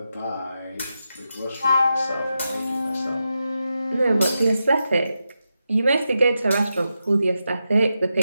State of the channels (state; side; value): inverted; both; correlation -0.88